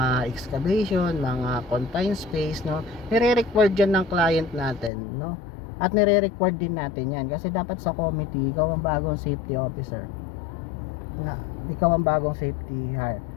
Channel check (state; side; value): drops out; right; at 4.9 s